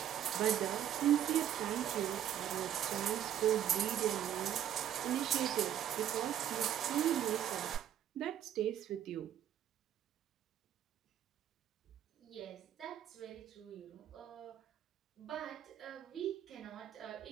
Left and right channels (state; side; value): quieter; left; 10.6 dB